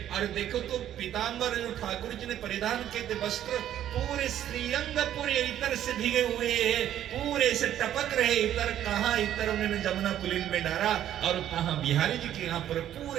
और देखो तो पीतांबर जो ठाकुर जी ने परिधान किए थे वस्त्र पूरे श्रीअंग पूरे इतर से भीगे हुए हैं, पूरे से टपक रहे इतर। कहाँ इतर उन्होंने जमुना पुलिन में डाला और कहाँ बिहारी जी के यहाँ पर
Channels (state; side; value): quieter; left; 11.3 dB